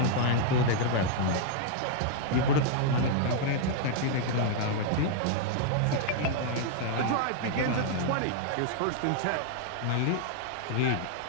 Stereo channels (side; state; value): both; different; correlation -0.01